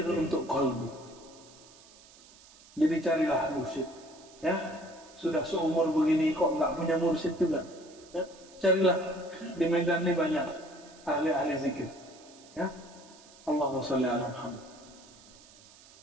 untuk qalbu. Jadi carilah mursyid, ya. Sudah seumur begini kok nggak punya mursyid juga, ya? Carilah, di Medan ini banyak ahli-ahli zikir, ya. Allahumma sholli ala Muhammad.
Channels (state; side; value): noise; right; hiss, 23 dB below the sound